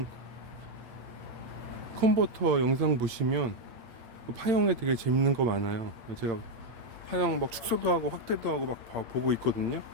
컨버터 영상 보시면 그 파형에 되게 재밌는 거 많아요. 제가 파형 막 축소도 하고 확대도 하고 막 보고 있거든요.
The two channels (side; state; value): left; late; 8.3 ms